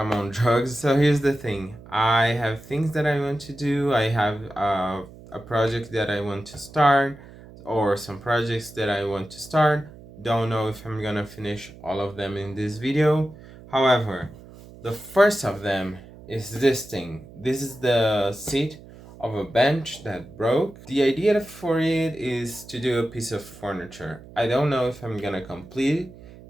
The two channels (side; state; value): right; noise; hum, 19 dB below the sound